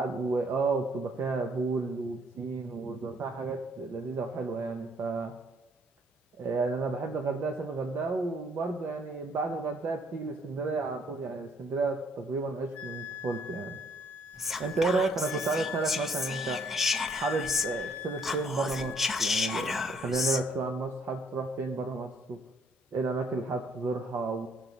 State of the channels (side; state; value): both; normal; correlation 0.65